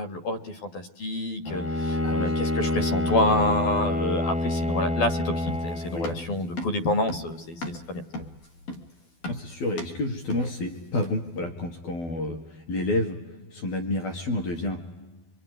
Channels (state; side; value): late; right; 12 ms